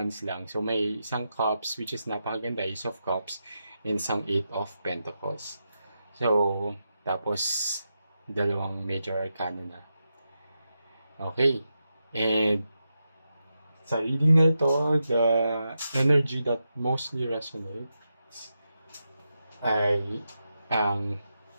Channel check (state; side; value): inverted; both; correlation -0.87